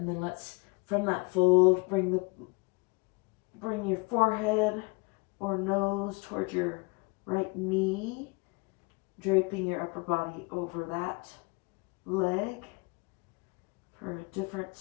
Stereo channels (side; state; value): right; quieter; 28.8 dB